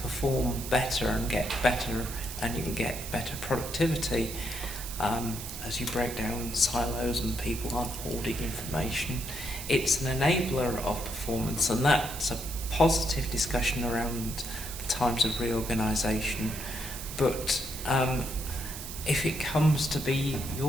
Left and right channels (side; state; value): right; noise; hiss, 9 dB below the sound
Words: perform better and get better, and you can get better productivity as you break down silos and people aren't hoarding information. It's an enabler of performance, and that's a positive discussion around the times of reorganisation. But if it comes to be